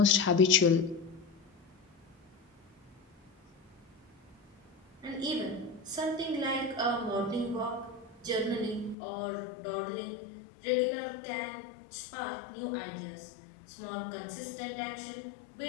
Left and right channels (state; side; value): drops out; right; at 9.0 s